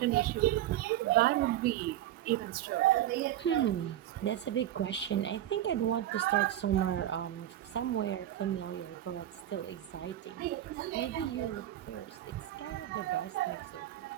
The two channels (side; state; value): left; quieter; 12.7 dB